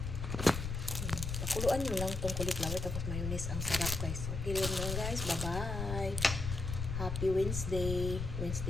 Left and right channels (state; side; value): noise; left; rumble, 4 dB below the sound